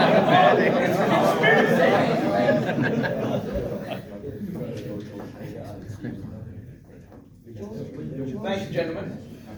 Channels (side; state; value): both; identical; correlation 1.00